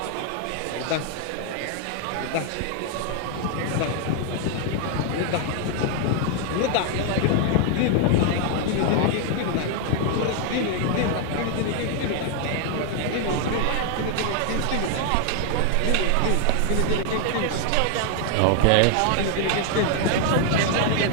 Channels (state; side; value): different; both; correlation 0.00